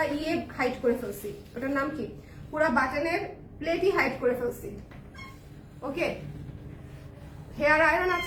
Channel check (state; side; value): identical; both; correlation 1.00